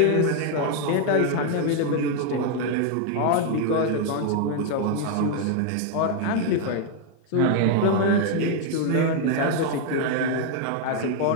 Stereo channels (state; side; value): different; both; correlation 0.00